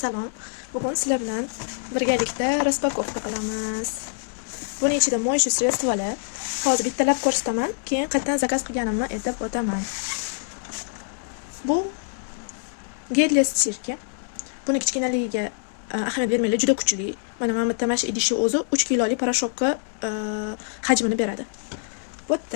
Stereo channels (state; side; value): silent; right; digital silence